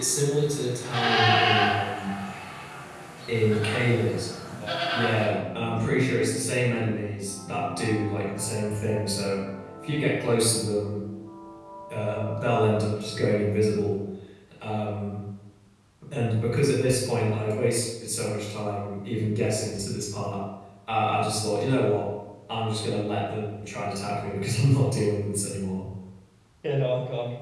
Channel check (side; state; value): both; identical; correlation 1.00